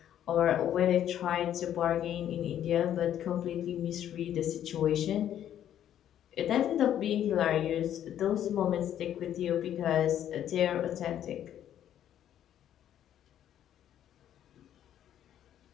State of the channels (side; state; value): right; quieter; 10.7 dB